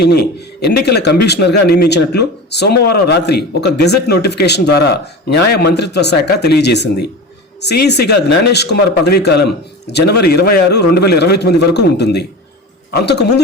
ఎన్నికల కమిషనర్గా నియమించినట్లు సోమవారం రాత్రి ఒక గెజెట్ నోటిఫికేషన్ ద్వారా న్యాయ మంత్రిత్వ శాఖ తెలియజేసింది. సిఈసిగా జ్ఞానేష్ కుమార్ పదవీకాలం జనవరి 26, 2029 వరకు ఉంటుంది. అంతకుముందు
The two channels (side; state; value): both; normal; correlation 0.30